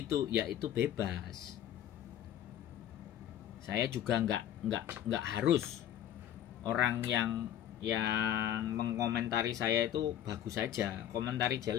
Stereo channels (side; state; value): right; quieter; 11.0 dB